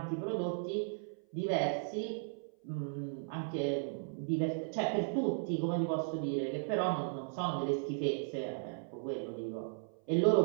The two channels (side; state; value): left; silent; 54 dB below the other